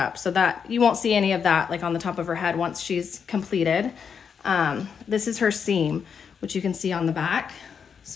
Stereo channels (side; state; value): right; quieter; 6.7 dB